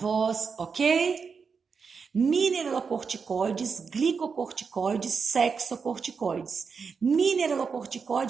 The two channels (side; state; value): left; quieter; 5.6 dB